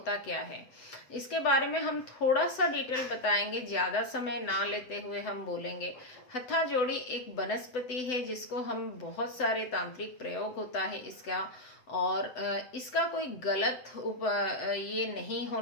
क्या है, इसके बारे में हम थोड़ा सा डिटेल बताएंगे, ज़्यादा समय ना लेते हुए हम बोलेंगे। हत्था जोड़ी एक वनस्पति है जिसको हम बहुत सारे तांत्रिक प्रयोग होता है इसका, और इसका कोई गलत ये नहीं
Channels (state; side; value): late; right; 8.0 ms